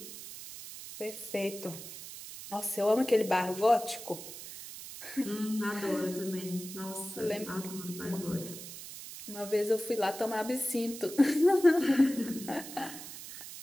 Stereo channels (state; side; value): noise; right; hiss, 12 dB below the sound